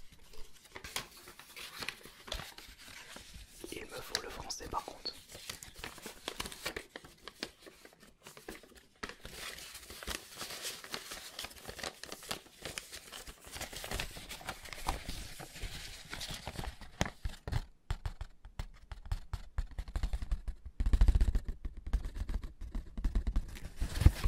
Il me faut le français par contre.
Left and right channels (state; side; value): identical; both; correlation 1.00